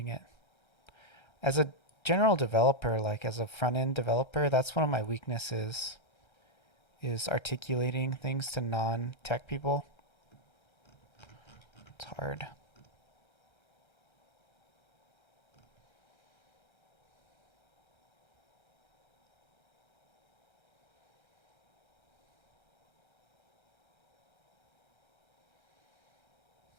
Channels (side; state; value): right; late; 1.3 ms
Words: it. As a general developer, like as a front-end developer, that's one of my weaknesses, is articulating things to non-tech people. It's hard.